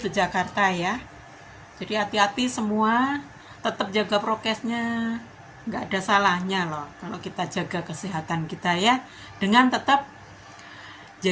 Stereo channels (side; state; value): both; identical; correlation 1.00